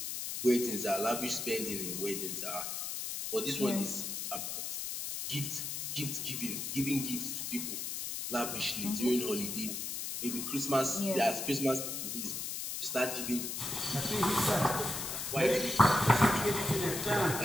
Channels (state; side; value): noise; left; hiss, 4 dB below the sound